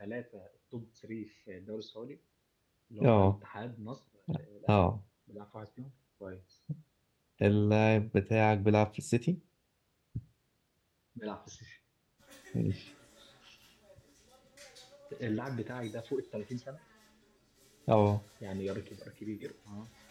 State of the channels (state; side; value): identical; both; correlation 1.00